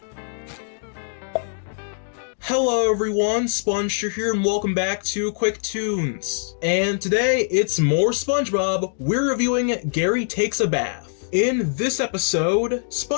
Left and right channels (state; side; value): silent; right; digital silence